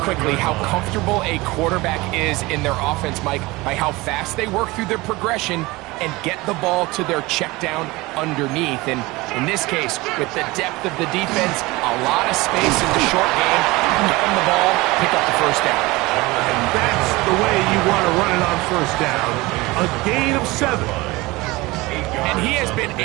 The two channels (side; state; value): left; quieter; 21.7 dB